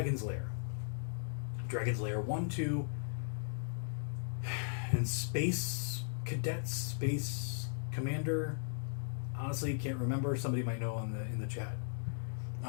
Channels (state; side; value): silent; right; digital silence